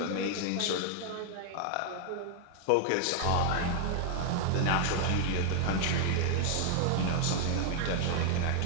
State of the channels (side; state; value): both; different; correlation 0.00